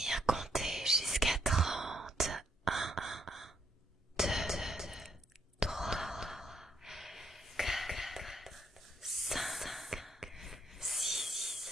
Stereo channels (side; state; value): both; normal; correlation 0.74